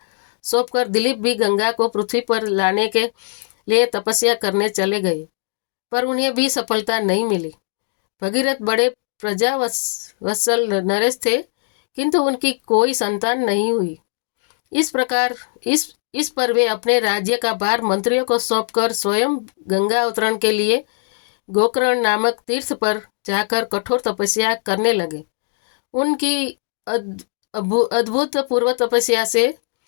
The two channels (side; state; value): right; silent; 63 dB below the other